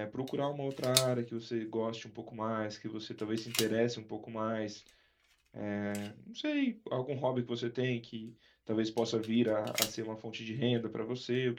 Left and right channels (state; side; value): identical; both; correlation 1.00